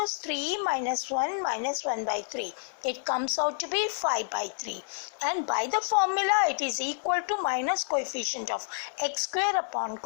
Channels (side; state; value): right; silent; 58 dB below the other